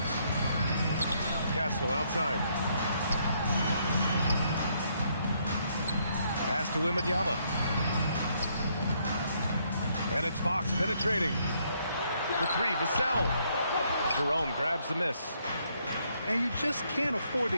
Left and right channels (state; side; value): inverted; both; correlation -0.71